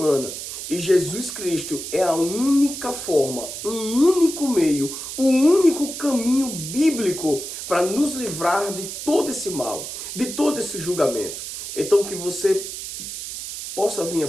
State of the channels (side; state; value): right; noise; hiss, 8 dB below the sound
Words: e Jesus Cristo é a única forma, um único meio, o único caminho bíblico para nos livrar de todo esse mal, de todo esse julgamento. Então que você possa vir a